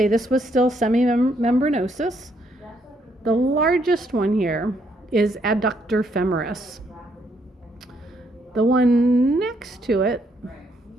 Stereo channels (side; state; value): both; normal; correlation 0.72